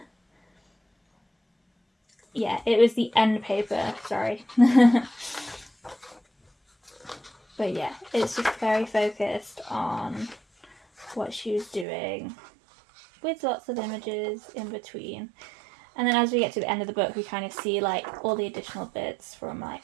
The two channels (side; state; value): left; drops out; at 11.9 s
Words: Yeah, it was the end paper, sorry. But yeah, it's just very focused on what she was doing, with lots of images in between. And then as we get to the end of the book, we kind of see like all the additional bits from like